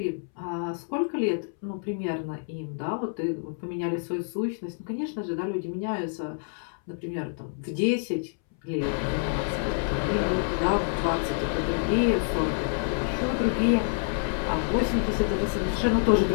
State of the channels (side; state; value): right; silent; 60 dB below the other